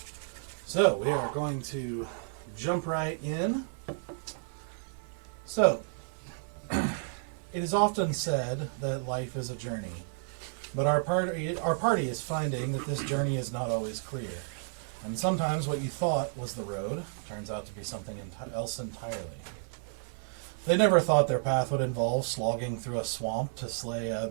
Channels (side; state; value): left; silent; 57 dB below the other